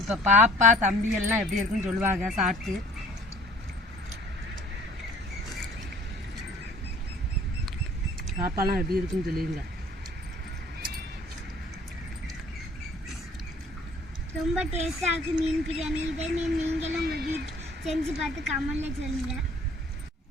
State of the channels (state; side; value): normal; both; correlation 0.52